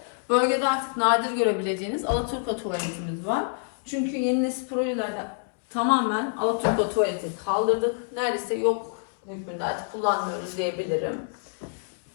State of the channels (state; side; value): silent; right; digital silence